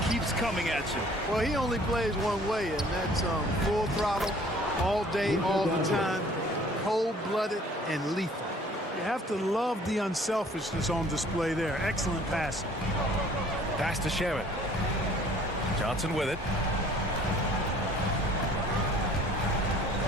keeps coming at you. Well, he only plays one way, and that's full throttle, all day, all the time, cold-blooded and lethal. You have to love the unselfishness on display there. Excellent passing. Pass to Shaman. Johnson with it.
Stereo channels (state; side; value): normal; both; correlation 0.54